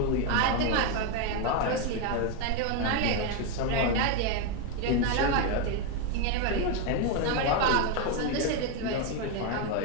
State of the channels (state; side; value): different; both; correlation 0.02